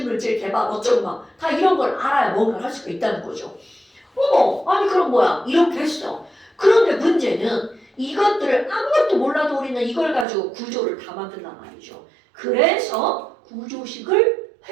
개발 어쩌고 막 다 이런 걸 알아야 뭔가를 할 수가 있다는 거죠. 어머, 아니 그럼 뭐야? 이렇게 했어. 그런데 문제는 이것들을 아무것도 몰라도 우리는 이걸 가지고 구조를 다 만든단 말이죠. 그래서 구조식을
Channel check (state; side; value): drops out; left; at 10.2 s